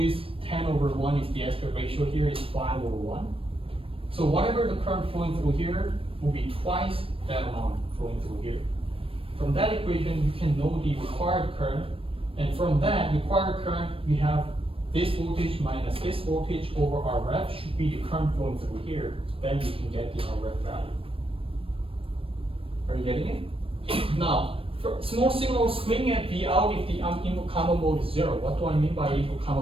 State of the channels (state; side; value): late; left; 0.27 ms